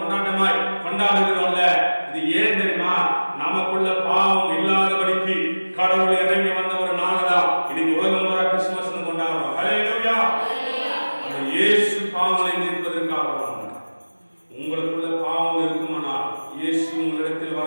கொண்டாடுகிறோம்ல. இது ஏன் தெரியுமா? நமக்குள்ள பாவம் இல்லாதபடிக்கு கடவுள் இறங்கி வந்த ஒரு நாள்தான் இன்னைக்கு உலகம் பூரா கிறிஸ்துமஸ் கொண்டாடுறோம். ஹல்லேலூயா. அந்த இயேசு பாவங்களை நீக்குவதற்காக வந்தார். உங்களுக்குள்ள பாவம் இருக்குமானால் இயேசு உங்களிடத்தில்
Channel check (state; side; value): inverted; both; correlation -1.00